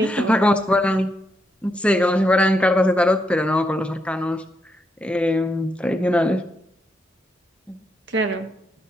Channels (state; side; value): normal; both; correlation 0.80